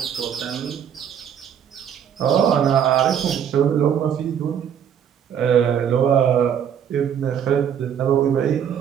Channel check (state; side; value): quieter; left; 8.7 dB